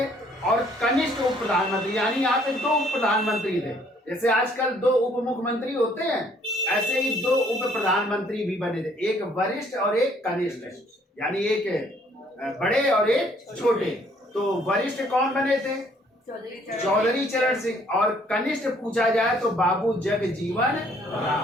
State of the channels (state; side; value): normal; both; correlation 0.62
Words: और कनिष्ठ उप प्रधानमंत्री, यानी यहाँ पे दो उप प्रधानमंत्री थे। जैसे आजकल दो उप मुख्यमंत्री होते हैं, ऐसे ही दो उप प्रधानमंत्री भी बने थे, एक वरिष्ठ और एक कनिष्ठ, यानी एक बड़े और एक छोटे। तो वरिष्ठ कौन बने थे? चौधरी चरण सिंह। और कनिष्ठ पूछा जाए तो बाबू जगजीवन